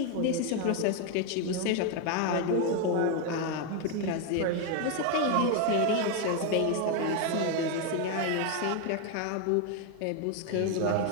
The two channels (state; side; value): different; both; correlation 0.01